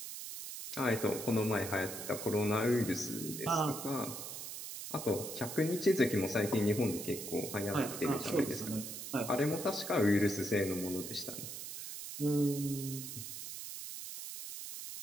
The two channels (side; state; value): right; noise; hiss, 8 dB below the sound